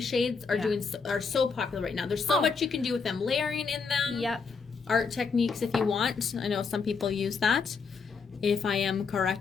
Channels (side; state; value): right; quieter; 5.1 dB